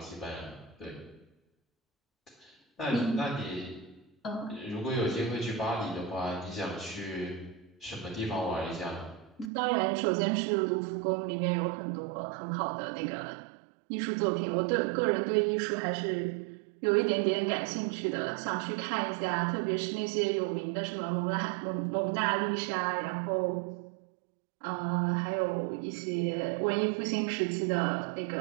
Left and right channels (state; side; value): drops out; left; at 9.5 s